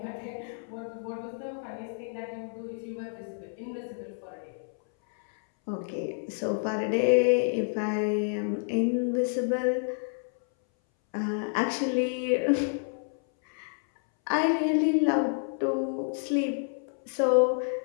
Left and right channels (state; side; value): silent; right; 58 dB below the other